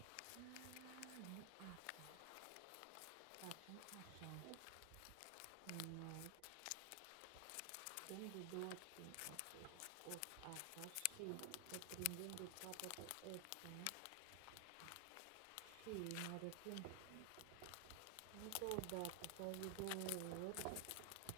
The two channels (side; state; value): both; different; correlation 0.00